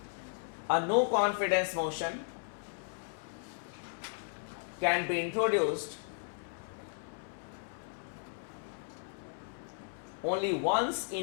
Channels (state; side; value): silent; right; 54 dB below the other